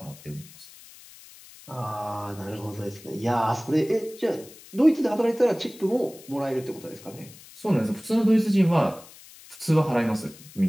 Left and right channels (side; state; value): left; noise; hiss, 20 dB below the sound